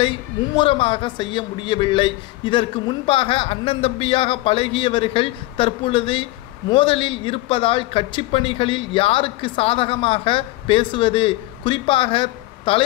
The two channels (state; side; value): quieter; right; 18.7 dB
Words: மும்முரமாக செய்ய முடியவில்லை. இதற்கு முன்பாக அண்ணன் தம்பியாக பழகியவர்கள் தற்பொழுது மோதலில் இருப்பதால் கட்சி பணிகளில் யாருக்கு சாதகமாக பேசுவது, குறிப்பாக